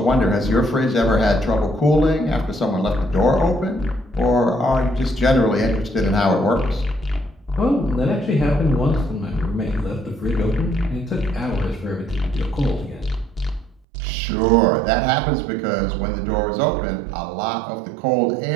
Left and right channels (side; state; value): left; drops out; at 13.8 s